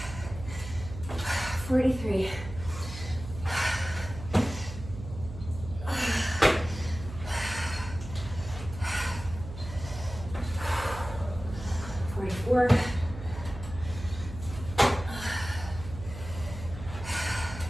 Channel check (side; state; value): right; noise; hum, 11 dB below the sound